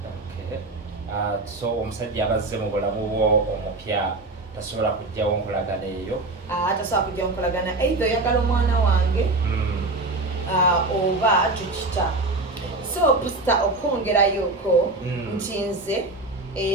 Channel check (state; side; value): quieter; left; 3.0 dB